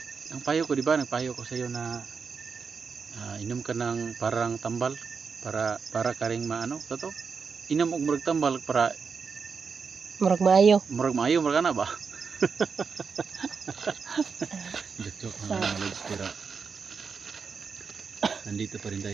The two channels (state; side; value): quieter; left; 5.5 dB